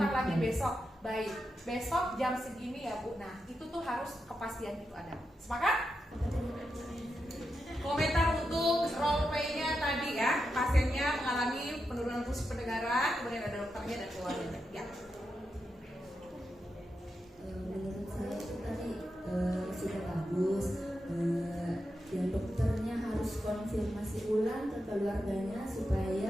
lagi besok. Baik, besok jam segini ya Bu. Nah, itu tuh harus kepastian itu ada. Sepakat? Komentar untuk role play-nya tadi ya, pasiennya mengalami penurunan fungsi pendengaran, kemudian ada dokternya dan keluarganya. Ya. Menurut saya itu tadi sudah bagus. Dan dokternya harus konfirmasi ulang ke keluarganya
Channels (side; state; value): both; normal; correlation 0.87